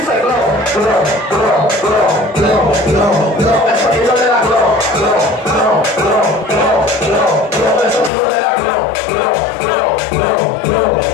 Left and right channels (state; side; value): drops out; right; at 8.1 s